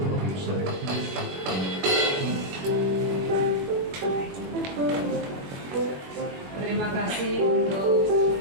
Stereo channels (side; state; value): left; late; 21 ms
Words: Bapak Ibu Saudara. Terima kasih untuk